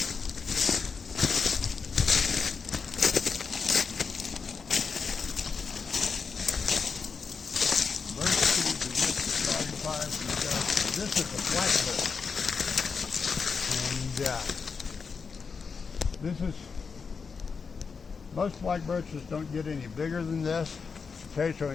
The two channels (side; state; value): right; quieter; 5.4 dB